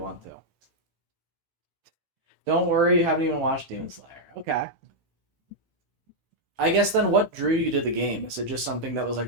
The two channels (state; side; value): late; left; 15 ms